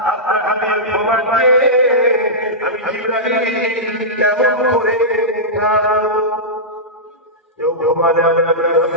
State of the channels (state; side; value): normal; both; correlation -0.13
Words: জিবরাইল কেমন করে উঠানো কেউ ঘুমালে